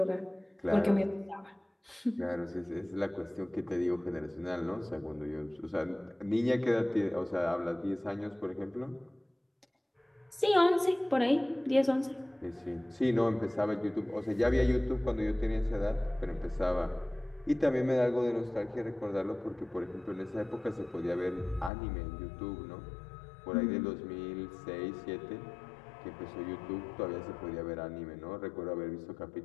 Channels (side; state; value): right; drops out; at 21.7 s